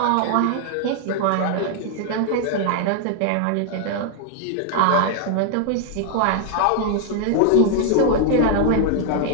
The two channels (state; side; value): different; both; correlation 0.00